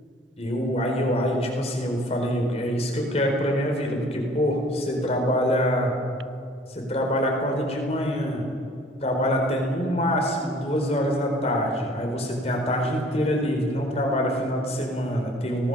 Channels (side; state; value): both; normal; correlation 0.53